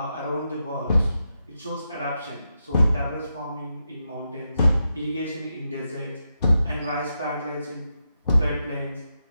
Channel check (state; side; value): inverted; both; correlation -0.86